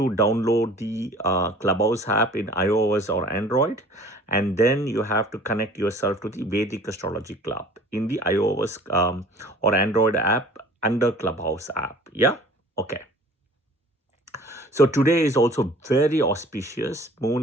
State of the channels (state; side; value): normal; both; correlation 0.48